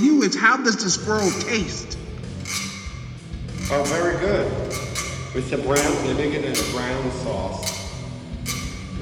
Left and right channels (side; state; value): both; identical; correlation 1.00